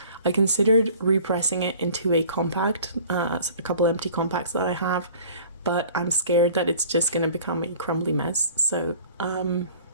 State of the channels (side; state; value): both; inverted; correlation -0.48